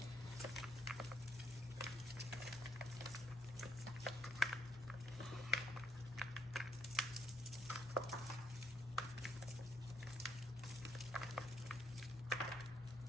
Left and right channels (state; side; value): normal; both; correlation 0.74